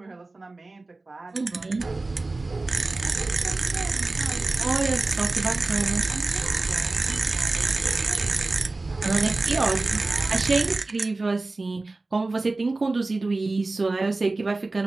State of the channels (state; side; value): quieter; left; 3.2 dB